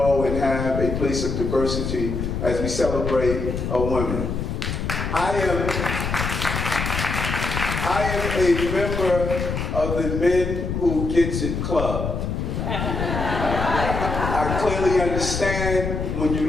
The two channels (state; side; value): noise; left; rumble, 3 dB below the sound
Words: and have a place of diversity as we celebrate women. I am a member of the Men Who Gets It Club. I clearly understand when